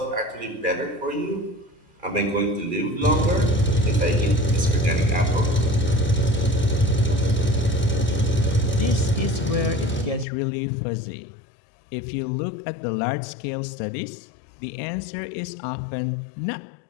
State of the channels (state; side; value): drops out; right; at 10.2 s